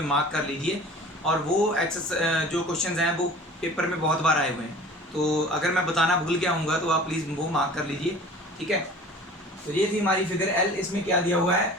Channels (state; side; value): normal; both; correlation 0.43